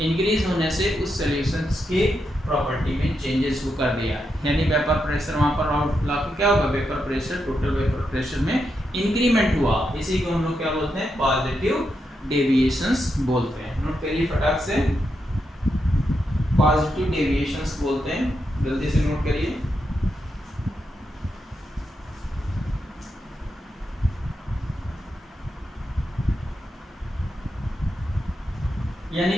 इंक्रीज होने से उस सॉल्यूशंस के प्रॉपर्टी में चेंजेस को कर दिया, यानी वेपर प्रेशर वहां पर आउटफ्लो क्या होगा, vapour pressure, total vapour pressure में इंक्रीमेंट हुआ। इसी को हम लोग क्या बोलते हैं, पॉजिटिव डेविएशंस बोलते हैं। नोट करिए फटाक से, पॉजिटिव डेविएशंस बोलते हैं, जल्दी से नोट करिए। यानी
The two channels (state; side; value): normal; both; correlation 0.84